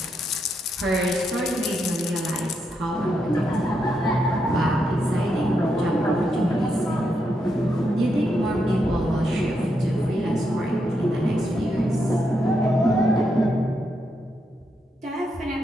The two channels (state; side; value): normal; both; correlation 0.81